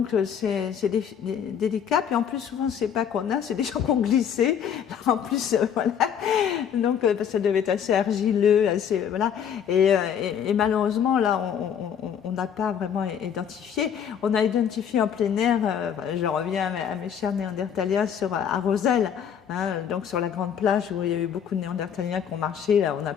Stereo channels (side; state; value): right; quieter; 8.3 dB